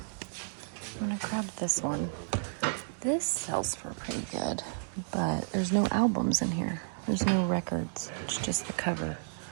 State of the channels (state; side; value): silent; left; digital silence